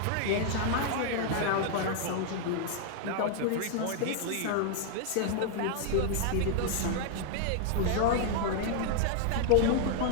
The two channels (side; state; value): both; different; correlation 0.00